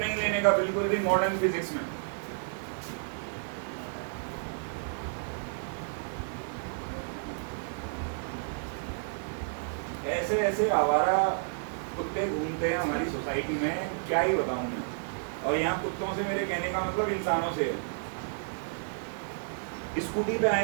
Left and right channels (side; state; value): left; silent; 57 dB below the other